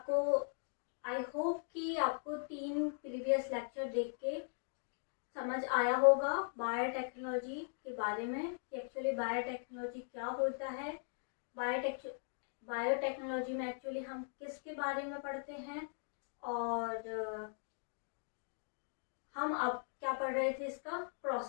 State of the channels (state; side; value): silent; right; digital silence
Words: आई होप कि आपको 3 प्रीवियस लेक्चर देख के समझ आया होगा बायोटेक्नोलॉजी के बारे में कि एक्चुअली बायोटेक्नोलॉजी क्या होता है। बायोटेक्नोलॉजी में एक्चुअली हम किसके बारे में पढ़ते हैं और हम अब क्या पढ़ रहे थे, इसका